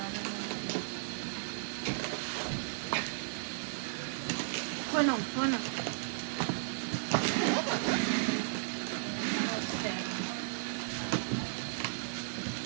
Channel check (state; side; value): silent; left; digital silence